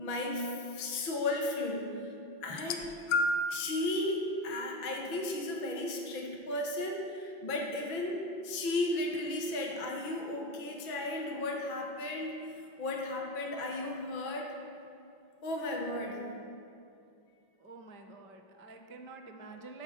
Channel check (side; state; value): right; late; 6.0 ms